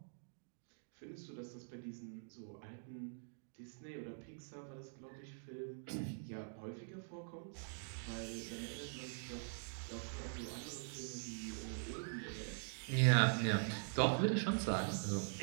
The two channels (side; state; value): left; silent; digital silence